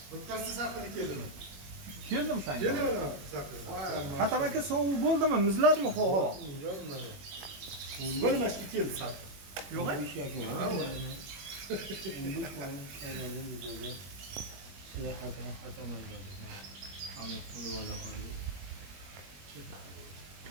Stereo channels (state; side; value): late; left; 21 ms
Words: O'tkazsa saqilib keldimi? Keldim sen. Keldim saqilib. Hatam aka sovuq bo'ldimi? Muzladimi havo? Bo'lmashga keldi saqilib. Yo'q.